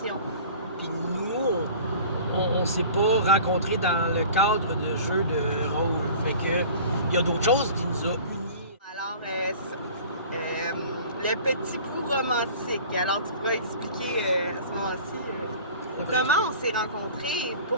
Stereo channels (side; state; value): both; inverted; correlation -0.43